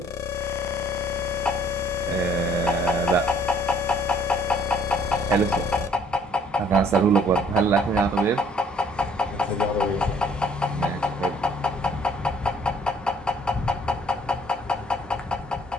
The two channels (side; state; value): both; normal; correlation 0.60